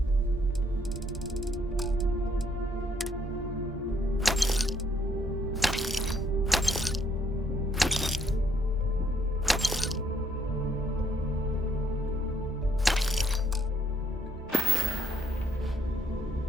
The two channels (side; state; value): both; normal; correlation 0.69